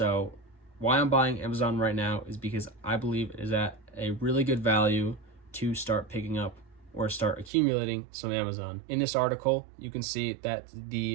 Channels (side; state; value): left; drops out; at 7.5 s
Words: why I'm buying Amazon right now is because I believe it is at a really good value to start picking up or start accumulating some Amazon. In this article, you can see that